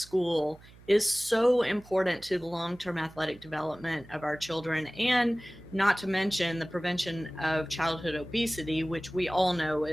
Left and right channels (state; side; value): noise; right; hum, 23 dB below the sound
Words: is so important to the long term athletic development of our children, and not to mention the prevention of childhood obesity, which we all know